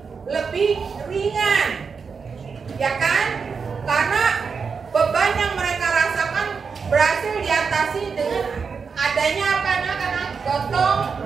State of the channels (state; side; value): quieter; left; 5.5 dB